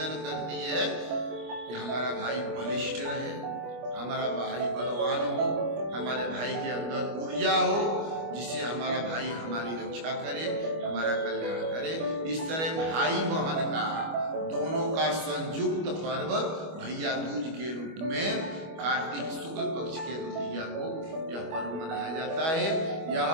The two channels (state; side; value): late; left; 25 ms